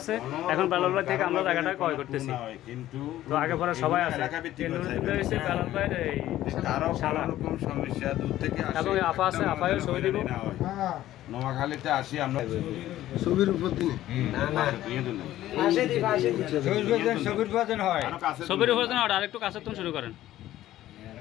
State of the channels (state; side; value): quieter; right; 13.9 dB